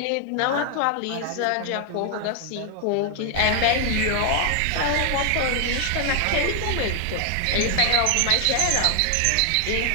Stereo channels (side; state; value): both; different; correlation 0.00